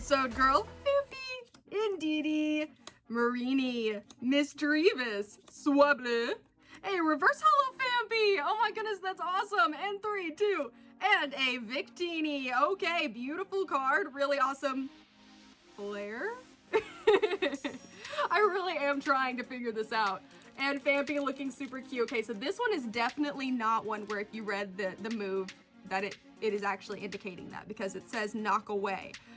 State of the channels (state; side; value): identical; both; correlation 1.00